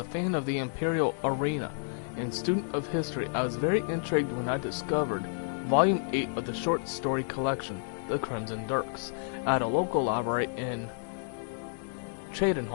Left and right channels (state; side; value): silent; right; digital silence